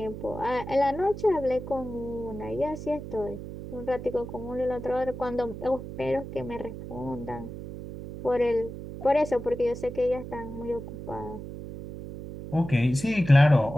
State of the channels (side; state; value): right; noise; hum, 10 dB below the sound